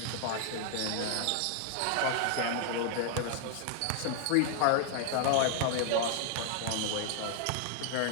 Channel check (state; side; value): different; both; correlation 0.00